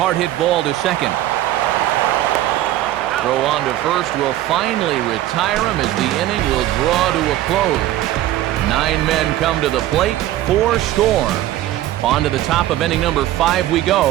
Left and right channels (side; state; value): left; quieter; 14.1 dB